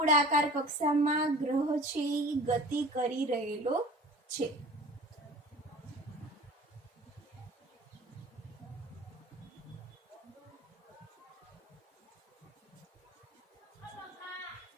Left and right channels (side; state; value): both; normal; correlation 0.42